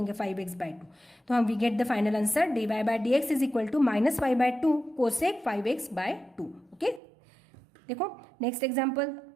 5x बाय 2, तो हम we get the final answer dy by dx is equal to minus 5 by 2 cosec 5x by 2। Okay, देखो next example.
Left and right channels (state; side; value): drops out; left; at 7.0 s